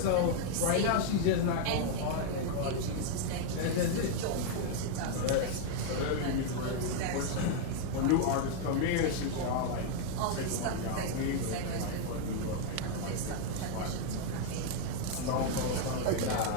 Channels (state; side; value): different; both; correlation 0.00